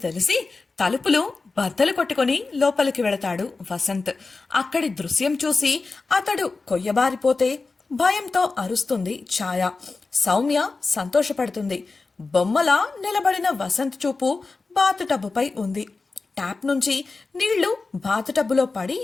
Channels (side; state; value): right; quieter; 3.9 dB